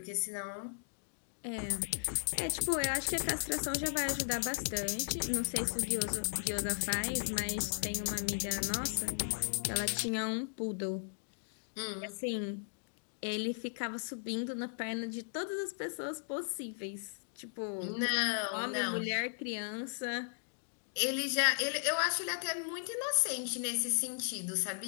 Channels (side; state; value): right; silent; digital silence